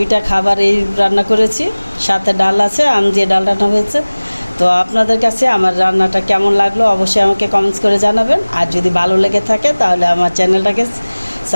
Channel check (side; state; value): both; inverted; correlation -1.00